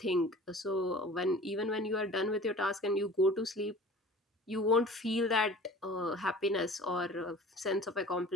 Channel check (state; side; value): normal; both; correlation 0.43